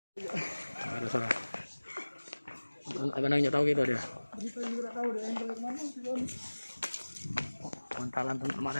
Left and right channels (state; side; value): inverted; both; correlation -1.00